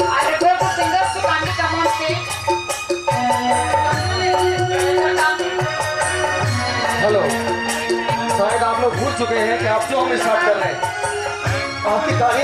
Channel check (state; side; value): identical; both; correlation 1.00